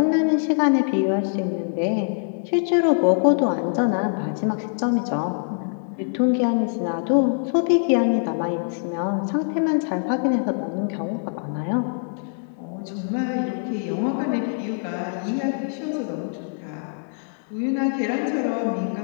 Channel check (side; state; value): right; silent; digital silence